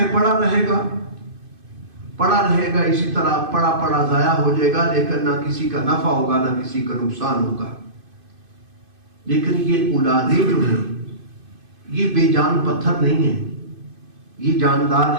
پڑا رہے گا اسی طرح، پڑا ضائع ہو جائے گا. لیکن نہ کسی کا نفع ہوگا، نہ کسی کا نقصان ہوگا. لیکن یہ اولادیں جو ہیں یہ بے جان پتھر نہیں ہیں، یہ جاندار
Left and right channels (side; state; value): left; late; 2.5 ms